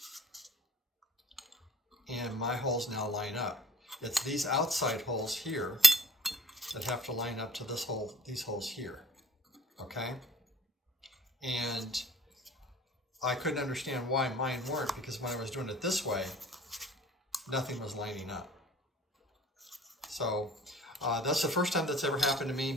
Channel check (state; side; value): normal; both; correlation 0.51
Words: and my holes now line up. It's these outside holes here that have to line up to this hole, these holes here, okay? And I couldn't understand why mine weren't, because when I was doing it this way, nothing was lining up. So that's the first time that's ever happened to me,